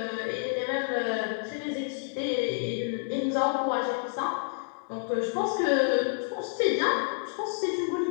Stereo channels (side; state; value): right; silent; digital silence